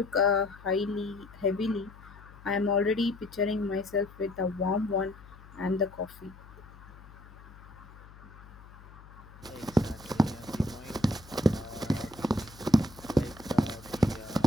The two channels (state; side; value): noise; left; hum, 20 dB below the sound